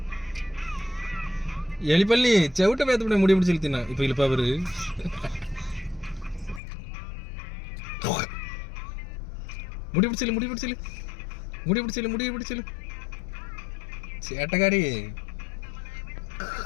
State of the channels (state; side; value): drops out; right; at 6.6 s